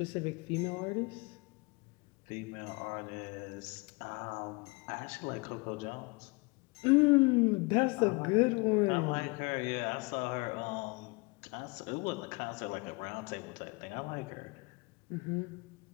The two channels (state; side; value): quieter; right; 27.9 dB